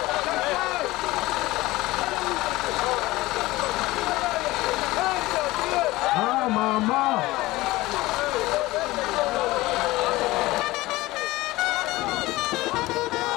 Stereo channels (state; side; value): quieter; right; 19.0 dB